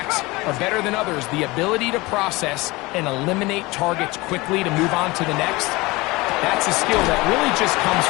are better than others. The ability to process and eliminate targets quickly to move on to the next, that's a skill that really just comes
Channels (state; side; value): quieter; right; 22.3 dB